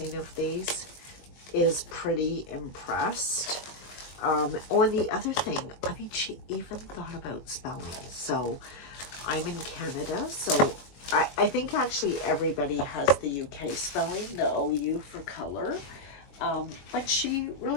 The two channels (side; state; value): right; late; 21 ms